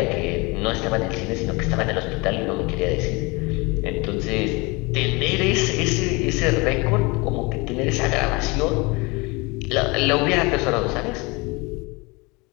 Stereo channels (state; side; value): quieter; right; 26.3 dB